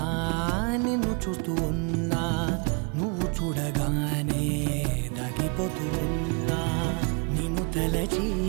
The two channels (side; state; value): left; quieter; 34.1 dB